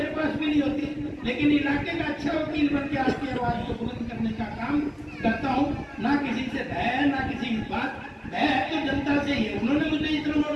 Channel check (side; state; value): both; identical; correlation 1.00